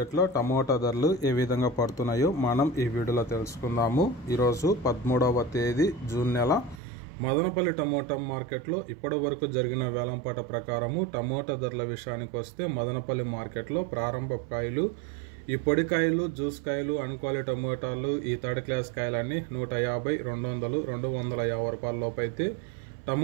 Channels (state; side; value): drops out; left; at 6.8 s